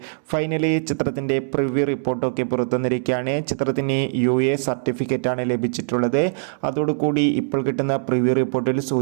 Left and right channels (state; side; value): silent; left; digital silence